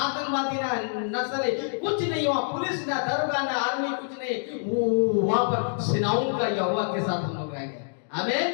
ना नक्सली कुछ नहीं, वहाँ पुलिस ना दरोगा ना आर्मी कुछ नहीं। वहाँ पर सेनाओं का यहोवा के साथ हम लोग रहेंगे। आमीन।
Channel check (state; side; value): silent; right; digital silence